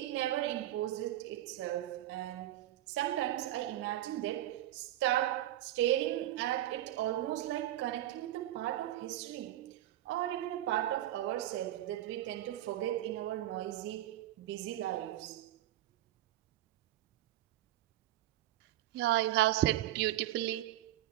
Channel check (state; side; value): quieter; left; 14.0 dB